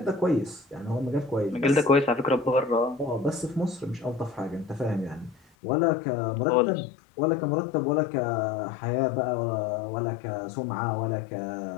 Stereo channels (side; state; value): right; drops out; at 5.4 s